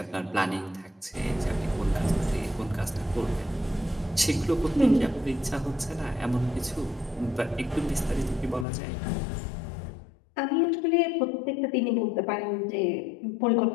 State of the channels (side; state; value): right; drops out; at 8.7 s